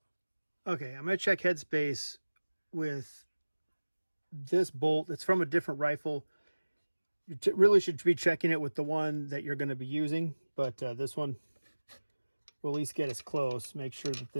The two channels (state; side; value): inverted; both; correlation -1.00